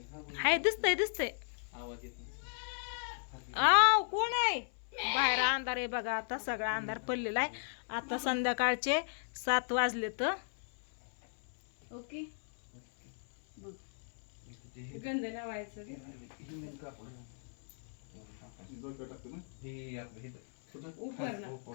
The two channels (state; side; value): silent; right; 54 dB below the other